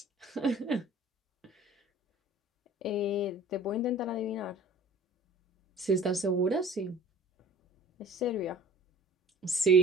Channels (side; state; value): both; normal; correlation 0.46